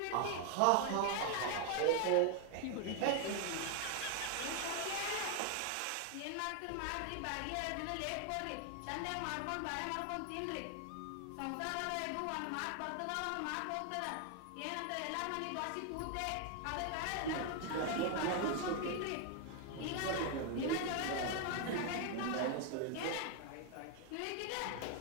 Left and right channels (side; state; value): both; different; correlation 0.00